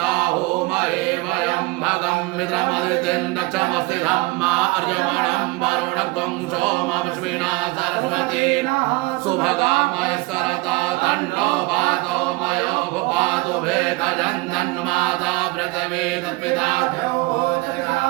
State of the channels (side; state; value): left; quieter; 22.7 dB